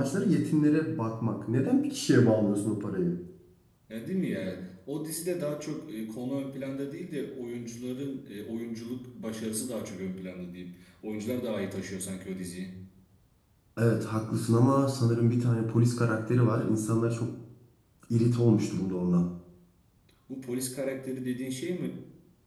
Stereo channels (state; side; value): identical; both; correlation 1.00